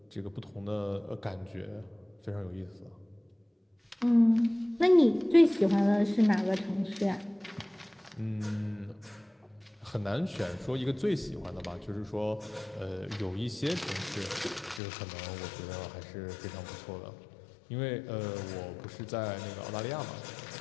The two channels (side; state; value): right; drops out; at 14.8 s